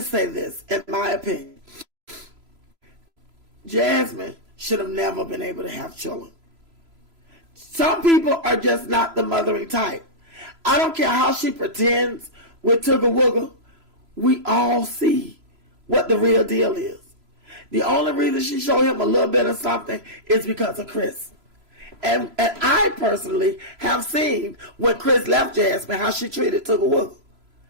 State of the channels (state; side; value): late; left; 3.0 ms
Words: say this, in my opinion. Jasmine should have never been able to have children. Some people are just not the mothering type. I don't care how she pretends with Tugga Wugga. We all see what the real deal is. The only reason she showed him a little bit of something is because of Chris. And I personally have seen when Chris left Jasmine, how she treated Tugga Wugga.